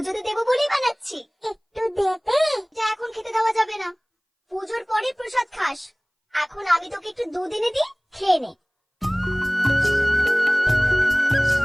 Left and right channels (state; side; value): identical; both; correlation 1.00